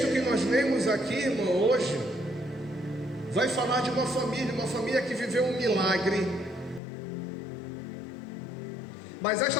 que nós lemos aqui, irmão, hoje, vai falar de uma família que viveu um milagre. Mas esta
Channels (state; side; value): drops out; right; at 6.8 s